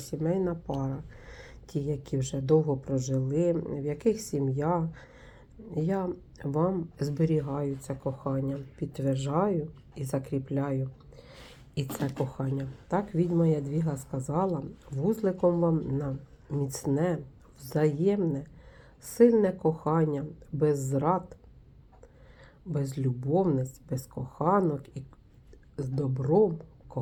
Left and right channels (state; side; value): identical; both; correlation 1.00